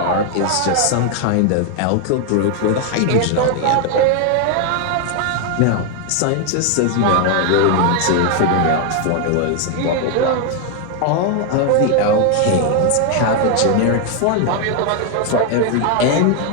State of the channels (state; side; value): different; both; correlation 0.01